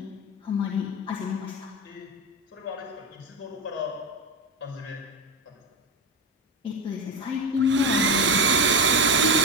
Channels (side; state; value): both; normal; correlation 0.15